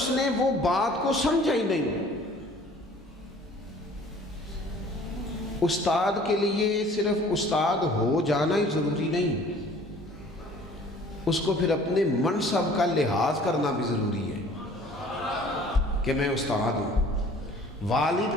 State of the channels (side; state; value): both; normal; correlation 0.52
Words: نے وہ بات کو سمجھا ہی نہیں، استاد کے لیے صرف استاد ہو جانا ہی ضروری نہیں، اس کو پھر اپنے منصب کا لحاظ کرنا بھی ضروری ہے کہ میں استاد ہوں۔ والد